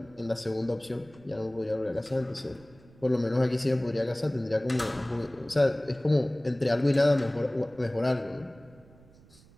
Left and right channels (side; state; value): right; noise; rumble, 25 dB below the sound